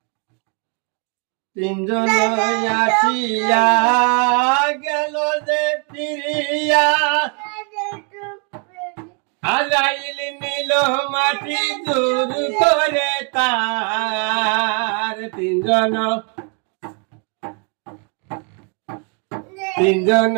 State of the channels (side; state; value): left; quieter; 37.7 dB